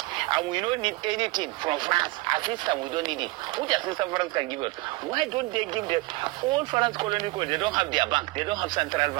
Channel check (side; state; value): left; quieter; 22.1 dB